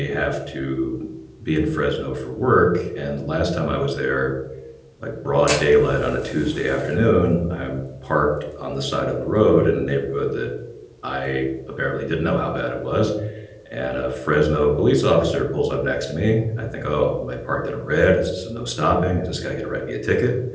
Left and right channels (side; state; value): both; identical; correlation 1.00